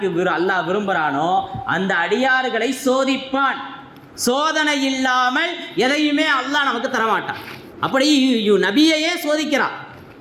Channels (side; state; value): both; identical; correlation 1.00